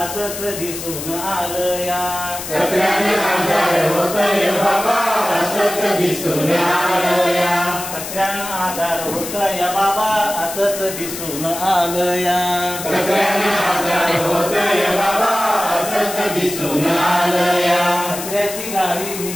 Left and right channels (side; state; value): left; noise; hiss, 8 dB below the sound